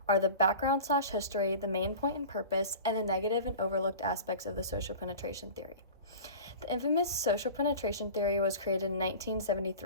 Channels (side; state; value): both; inverted; correlation -0.37